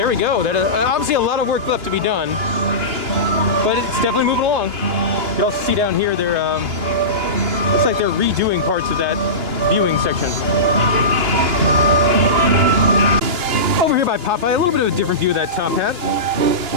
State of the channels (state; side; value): late; left; 2.9 ms